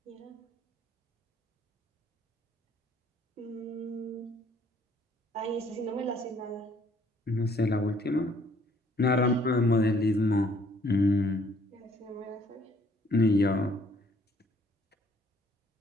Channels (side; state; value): both; normal; correlation 0.62